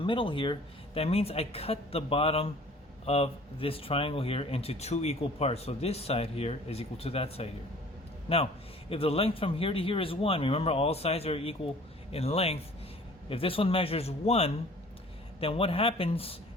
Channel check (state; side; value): normal; both; correlation 0.50